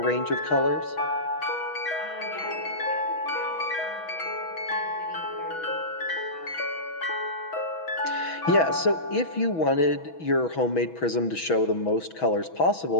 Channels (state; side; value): late; right; 6.2 ms